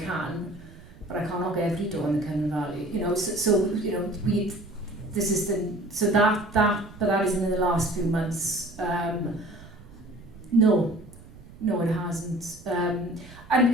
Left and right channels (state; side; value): noise; right; rumble, 20 dB below the sound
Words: but I can't knock every door in the Cymru Valley. But that isn't in the last few months. No, it hasn't. And